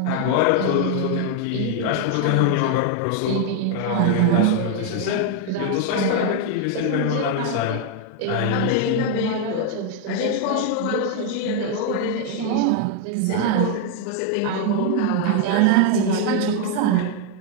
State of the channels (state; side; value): different; both; correlation 0.00